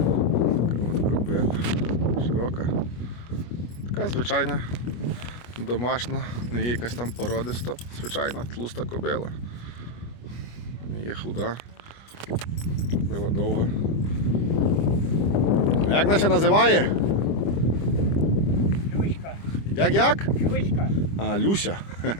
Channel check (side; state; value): right; late; 25 ms